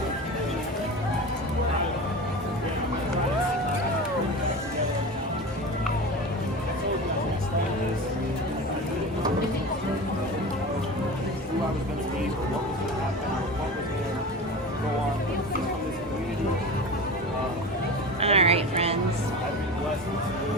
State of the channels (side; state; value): both; normal; correlation 0.30